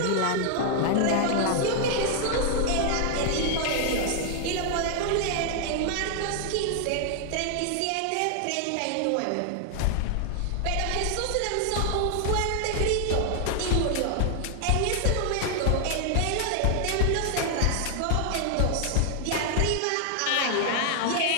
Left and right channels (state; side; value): different; both; correlation 0.00